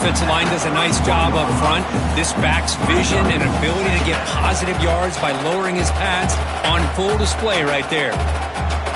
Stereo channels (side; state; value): both; identical; correlation 1.00